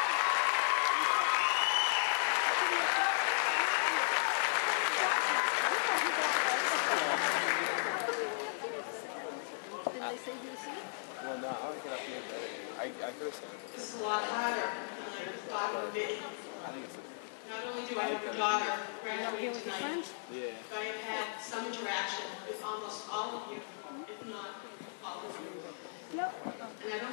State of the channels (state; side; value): silent; right; digital silence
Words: Did they say you see? Well, no, I would get up here better. I could have said it. This is a lot harder than I thought it would be. I think it's a... Not only do I have a daughter graduating tonight, Yeah. but I have had some interaction with almost all of you, if not all of you. And I don't